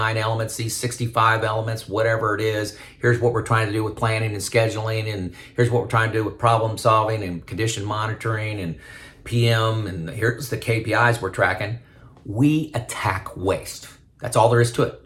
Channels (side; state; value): both; identical; correlation 1.00